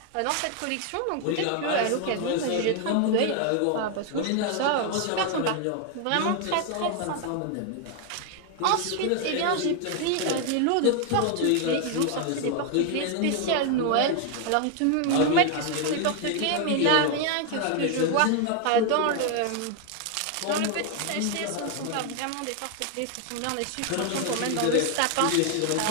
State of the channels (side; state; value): both; different; correlation 0.01